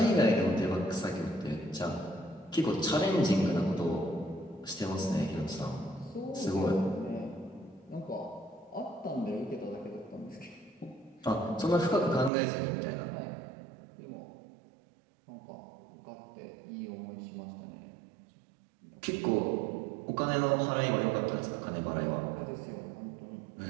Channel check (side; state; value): left; drops out; at 12.3 s